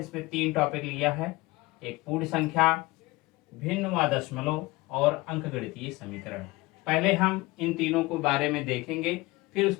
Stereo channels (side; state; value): right; quieter; 21.6 dB